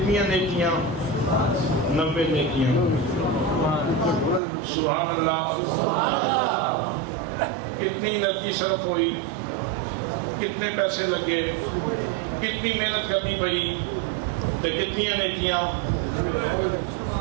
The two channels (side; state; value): left; drops out; at 4.4 s